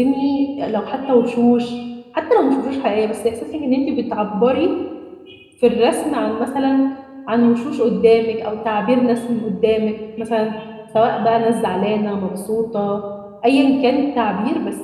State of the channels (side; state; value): both; identical; correlation 1.00